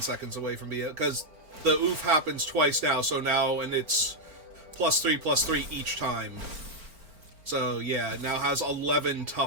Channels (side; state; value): left; late; 4.4 ms